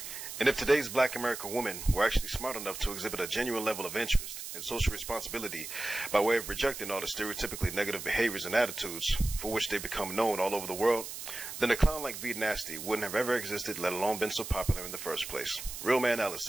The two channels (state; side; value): noise; right; hiss, 9 dB below the sound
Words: And if today's black American women were actually smart enough to exhibit a genuine level of interest and social responsibility by way of rejecting all the stereotypically negative behaviors and attitudes for which they become known all over the world, then a clown like V Nasty wouldn't have ever existed, let alone been so popular in the first place. Real Man Alice